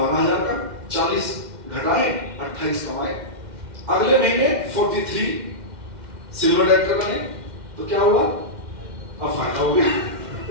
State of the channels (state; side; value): late; left; 2.1 ms